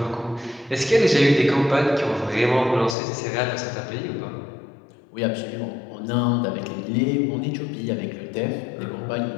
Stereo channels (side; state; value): right; drops out; at 3.0 s